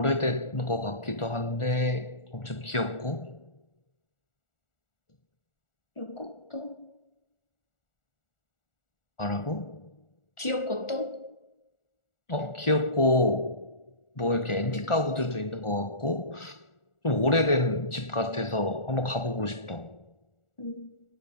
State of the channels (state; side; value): late; right; 1.4 ms